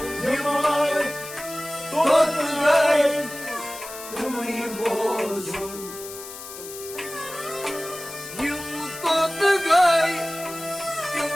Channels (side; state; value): left; noise; hiss, 12 dB below the sound